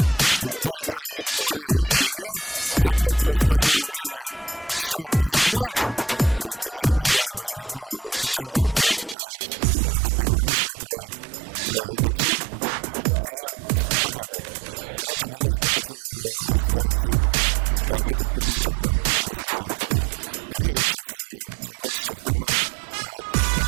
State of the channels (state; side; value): drops out; left; at 9.2 s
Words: где играл «Виктория» и «Альянс». Закончилось основное время, счет 2-2. Вот мы наблюдаем игру финальную, где за 1-е место играет «Даксон» и «Полярник». Я немножко хочу остановиться об этом турнире, рассказать. В турнире участвовало 26 команд,